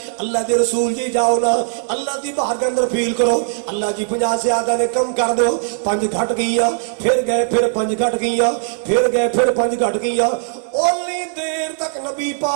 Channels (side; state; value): left; silent; digital silence